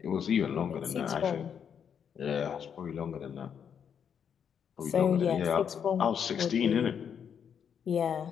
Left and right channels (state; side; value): quieter; right; 7.7 dB